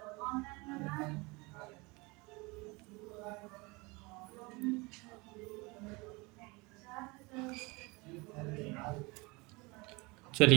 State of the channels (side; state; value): left; quieter; 25.8 dB